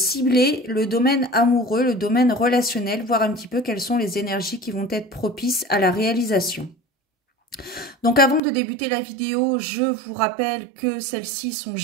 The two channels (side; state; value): left; drops out; at 8.4 s